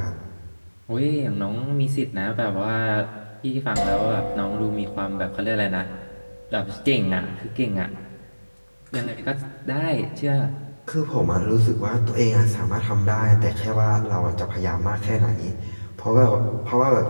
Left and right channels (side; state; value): both; inverted; correlation -1.00